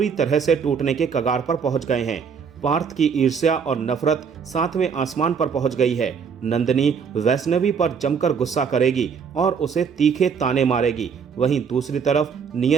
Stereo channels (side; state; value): left; quieter; 6.3 dB